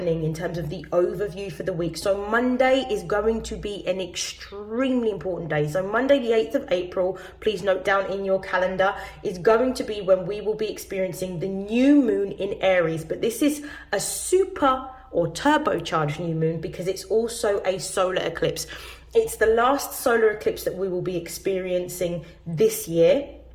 in terms of the overview for the week. So Monday is going to be an extremely important day. So Monday, the 8th of April, please note down in your calendar, is going to be when we will be experiencing the new moon in Aries. But this is a super or turbocharged new moon because it's also a solar eclipse. It's the last solar eclipse that we will be experiencing this year,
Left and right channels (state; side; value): identical; both; correlation 1.00